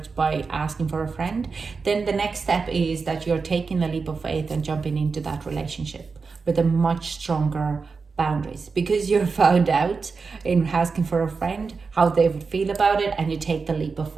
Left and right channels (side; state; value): left; quieter; 4.8 dB